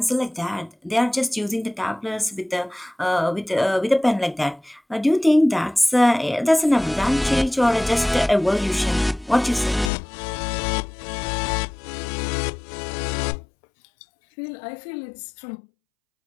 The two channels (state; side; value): drops out; right; at 9.9 s